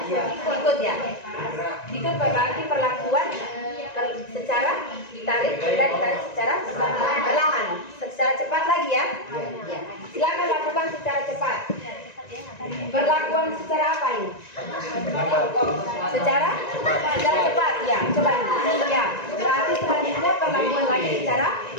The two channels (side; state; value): right; late; 1.9 ms